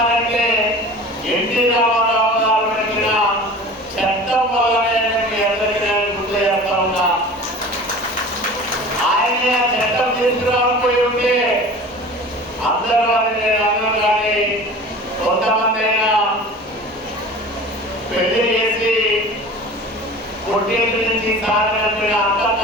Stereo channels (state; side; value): noise; left; hum, 28 dB below the sound